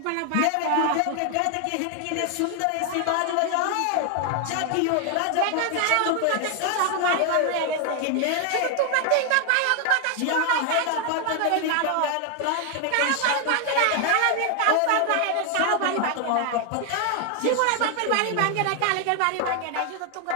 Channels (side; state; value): both; different; correlation 0.00